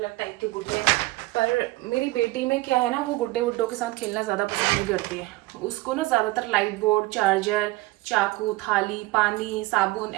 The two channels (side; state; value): left; quieter; 20.3 dB